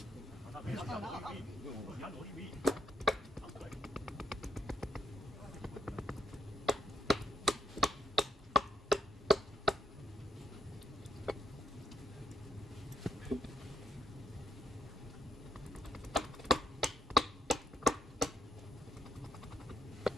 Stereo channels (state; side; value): normal; both; correlation 0.73